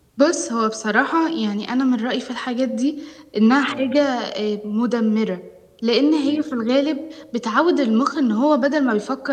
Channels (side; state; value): both; identical; correlation 1.00